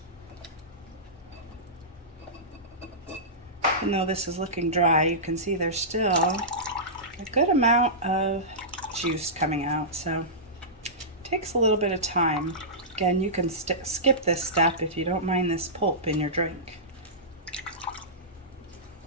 Even though this is looking dry, you can see there's still a good amount of juice coming out, so it takes a little bit of time. Again, you can skip this step if you don't mind this pulp in your drink.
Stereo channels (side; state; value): both; normal; correlation -0.18